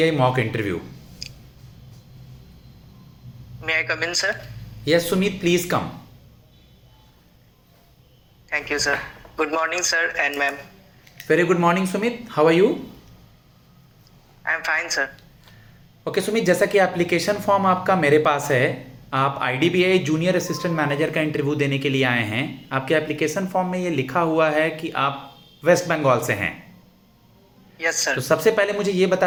mock interview. May I come in, sir? Yes, Sumit, please come. Thank you, sir. Good morning, sir and ma'am. Very good morning, Sumit. How are you? I'm fine, sir. Okay Sumit, जैसा कि एप्लीकेशन फॉर्म आपका मेरे पास है, आप IDBI जूनियर असिस्टेंट मैनेजर का इंटरव्यू देने के लिए आए हैं। आपके एप्लीकेशन फॉर्म में ये लिखा हुआ है कि आप वेस्ट बंगाल से हैं। यस तो सर। सबसे पहले मुझे ये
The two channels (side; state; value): both; identical; correlation 1.00